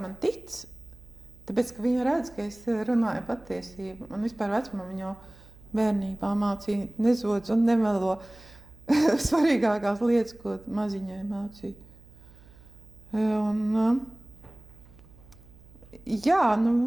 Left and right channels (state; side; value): noise; right; hum, 23 dB below the sound